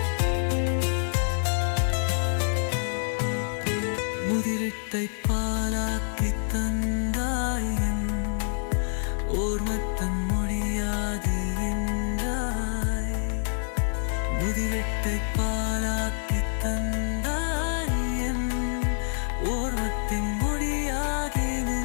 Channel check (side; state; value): right; silent; digital silence